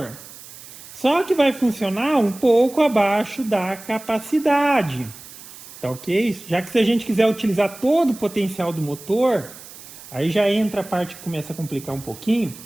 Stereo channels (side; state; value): right; noise; hiss, 17 dB below the sound